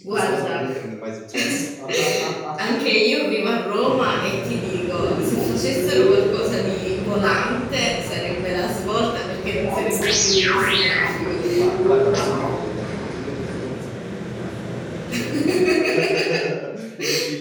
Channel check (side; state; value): both; identical; correlation 1.00